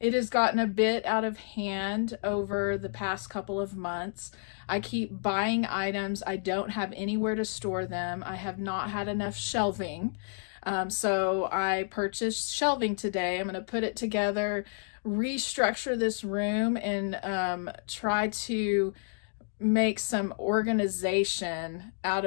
It has gotten a bit out of hand over the past couple of months. I keep buying items. I don't have anywhere to store them. I have not had enough shelving. So I purchased shelving today. I'm going to put it together, restructure this room, and try to make some organization out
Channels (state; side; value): silent; right; digital silence